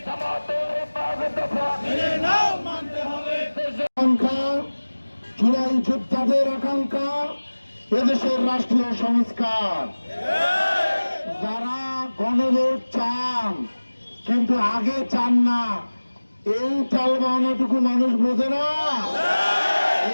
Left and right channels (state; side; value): inverted; both; correlation -1.00